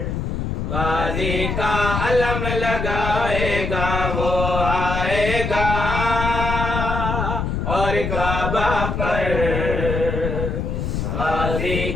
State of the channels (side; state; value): left; noise; rumble, 2 dB below the sound